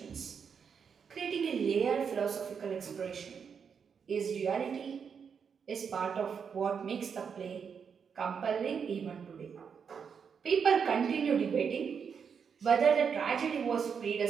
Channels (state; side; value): quieter; left; 6.6 dB